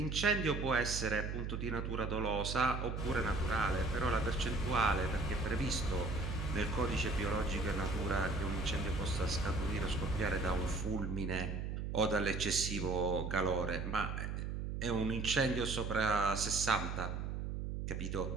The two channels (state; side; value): noise; right; hum, 3 dB below the sound